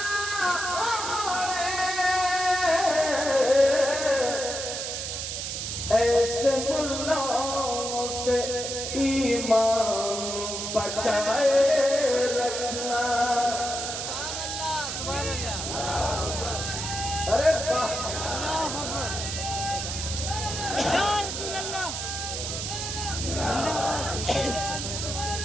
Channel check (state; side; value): noise; right; hiss, 4 dB below the sound